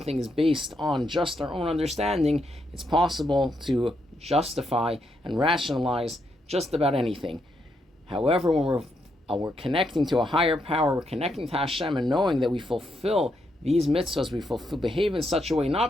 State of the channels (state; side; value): normal; both; correlation 0.79